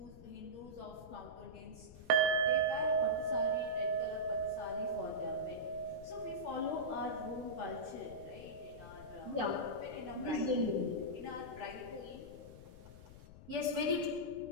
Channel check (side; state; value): left; noise; rumble, 16 dB below the sound